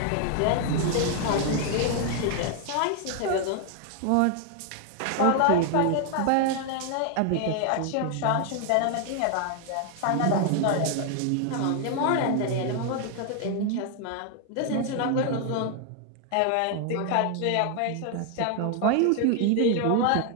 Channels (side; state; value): both; different; correlation 0.00